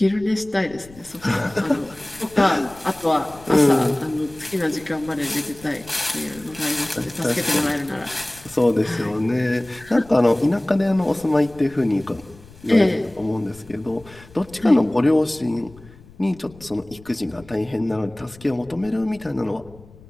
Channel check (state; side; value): noise; left; rumble, 22 dB below the sound